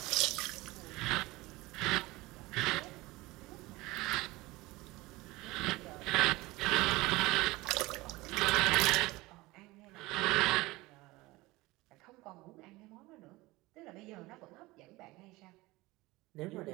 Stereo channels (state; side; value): quieter; left; 20.8 dB